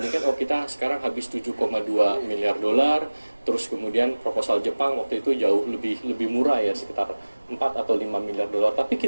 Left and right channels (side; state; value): both; inverted; correlation -1.00